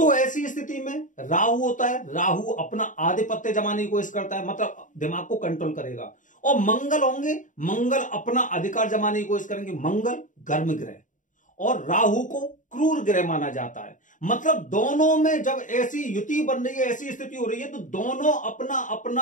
ऐसी स्थिति में राहु होता है, राहु अपना आधिपत्य जमाने की कोशिश करता है, मतलब दिमाग को कंट्रोल करेगा। और मंगल होंगे, मंगल अपना अधिकार जमाने की कोशिश करेंगे। मंगल गर्म ग्रह और राहु को क्रूर ग्रह माना जाता है। मतलब दोनों में जब ऐसी युति बन रही है, ऐसी स्थिति हो रही है, तो दोनों अपना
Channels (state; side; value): late; right; 0.37 ms